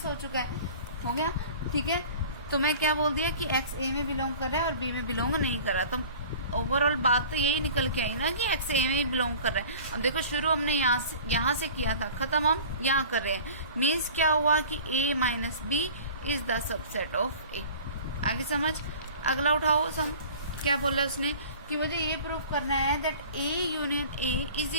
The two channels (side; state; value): both; inverted; correlation -0.43